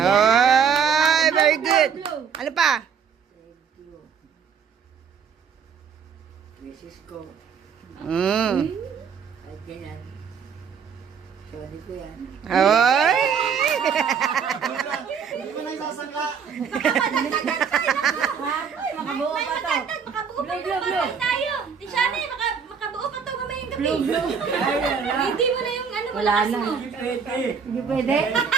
very good. Ano pa? Mrs. ko. At ganyan. Sorry ko yan. Ay! Hindi mo na isasangka. Makabuo pa to. Makabuo tayo. Di siya makabuo pa to mamayang gabi. Hindi mo na yung ano malakas mo. Hindi pwede. Hindi pwede.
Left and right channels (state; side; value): quieter; left; 6.7 dB